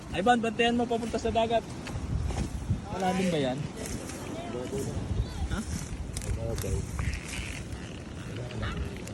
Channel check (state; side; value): identical; both; correlation 1.00